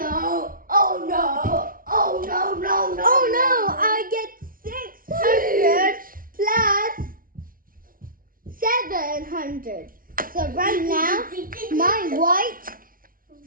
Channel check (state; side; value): late; left; 0.41 ms